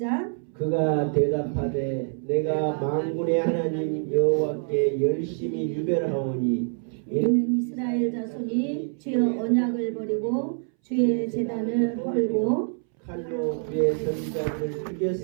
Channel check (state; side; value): silent; left; 61 dB below the other